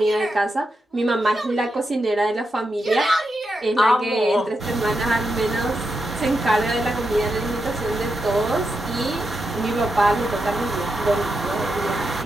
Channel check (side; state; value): both; normal; correlation 0.86